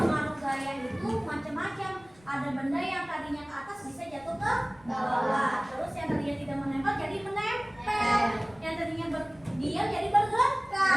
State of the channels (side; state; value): left; noise; rumble, 27 dB below the sound